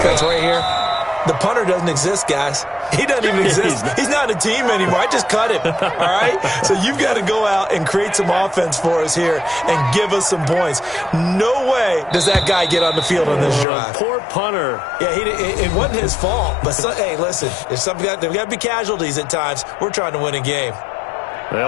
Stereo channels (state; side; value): drops out; right; at 13.7 s